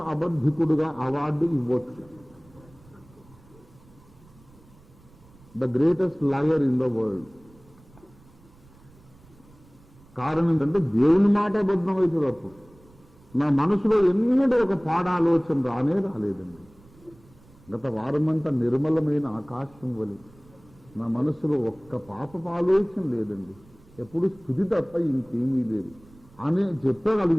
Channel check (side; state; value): right; noise; rumble, 26 dB below the sound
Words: అబద్ధికుడుగా అవార్డు ఇవ్వచ్చు. The greatest liar in the world. కారణం ఏంటంటే దేవుని మాట అబద్ధం అవుతుంది. అప్పుడు నా మనసులో ఎన్నడూ ఒక పాడాలోచన రాలేదండి. గత వారమంతా నిర్మలమైన ఆకాశం వలె నా మనసులో ఒక్క పాపపు ఆలోచన లేదండి. ఎప్పుడు స్థుతి తప్ప ఇంకేమీ లేదు అని